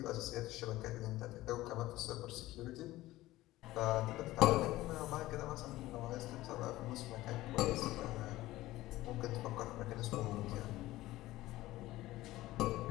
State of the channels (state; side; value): quieter; right; 16.9 dB